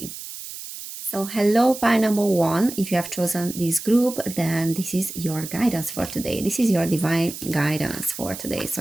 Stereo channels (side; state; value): right; noise; hiss, 11 dB below the sound